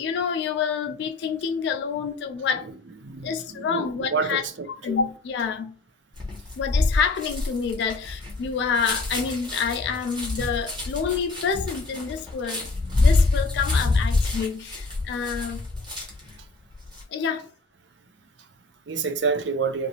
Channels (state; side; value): quieter; right; 3.4 dB